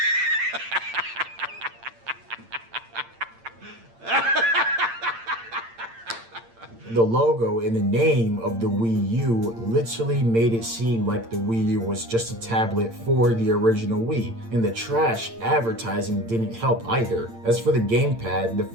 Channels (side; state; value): left; late; 8.8 ms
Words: The logo and the name of the Wii U literally made it seem like the Wii U was just a tablet for the original Wii, and the trash advertising didn't help either. As for the gamepad, the